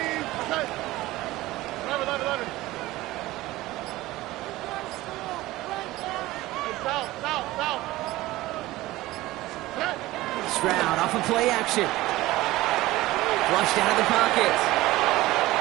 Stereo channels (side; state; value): left; quieter; 17.9 dB